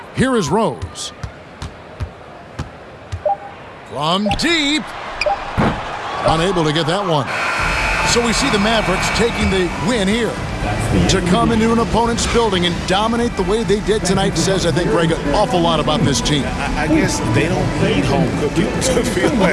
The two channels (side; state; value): both; identical; correlation 1.00